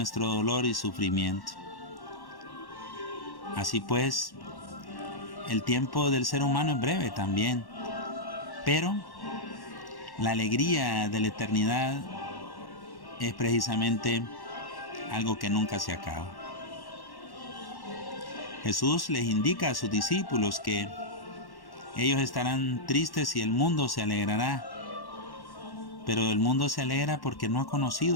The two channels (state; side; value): late; right; 1.1 ms